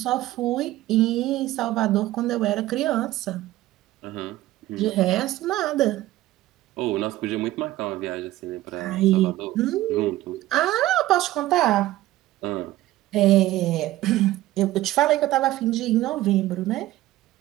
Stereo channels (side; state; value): left; quieter; 16.0 dB